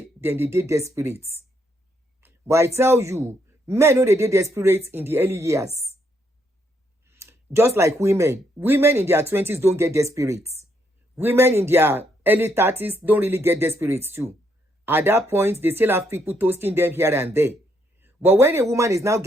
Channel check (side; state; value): both; normal; correlation 0.74